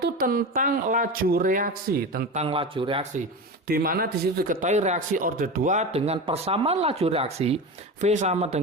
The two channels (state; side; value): normal; both; correlation 0.25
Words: itu tentang laju reaksi, di mana di situ diketahui reaksi order 2 dengan persamaan laju reaksi V sama